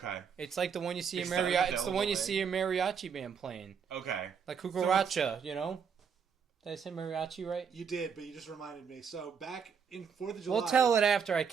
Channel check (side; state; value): left; quieter; 6.7 dB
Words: It's like the one you see in mariachi. It's the one you see a mariachi band playing. Okay. Like cucaracha, you know? Did I say mariachi right? You did, but you just reminded me. So back in 4th of July... We'll tell it after I